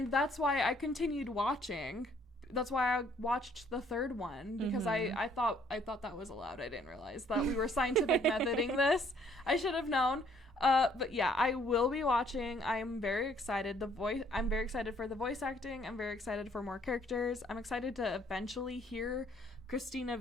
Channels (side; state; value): both; normal; correlation 0.63